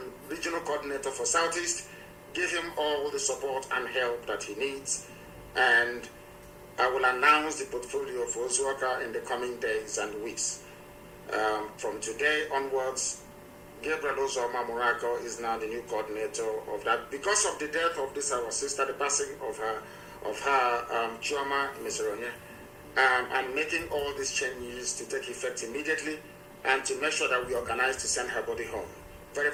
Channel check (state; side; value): identical; both; correlation 1.00